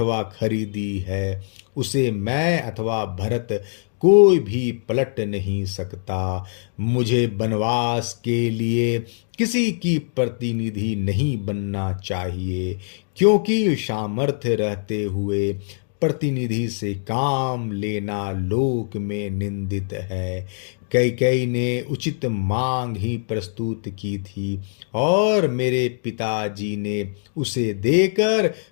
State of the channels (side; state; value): right; silent; digital silence